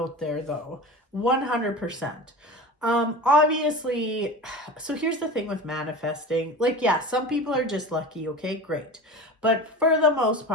there, though. 100%. Obviously, so here's the thing with manifesting. Like, yeah, some people are just lucky, okay, great. But for the most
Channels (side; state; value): both; normal; correlation 0.32